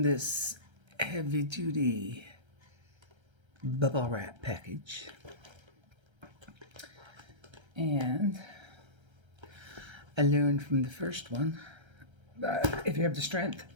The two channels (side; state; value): left; late; 1.3 ms